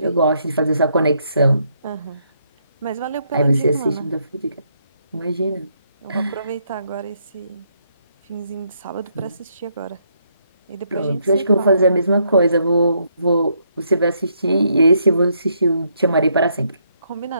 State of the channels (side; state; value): both; inverted; correlation -0.74